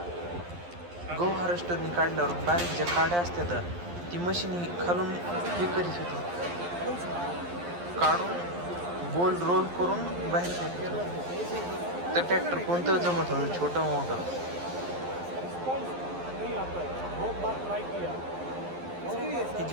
गहू हार्वेस्टरनी काढल्यावर बारीक ज्या काड्या असतात ती मशीन खालून हे करीत होती, काढून गोल रोल करून बाहेर फेकत होती. तर ट्रॅक्टर कोणतं जमत होतं, छोटं मोठं. नहीं आता है बहुत बार ट्राई किया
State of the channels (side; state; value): left; late; 11 ms